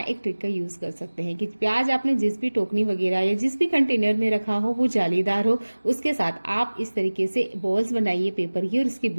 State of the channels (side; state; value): both; inverted; correlation -1.00